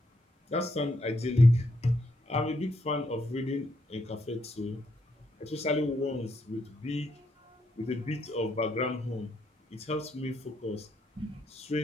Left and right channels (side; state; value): both; normal; correlation 0.77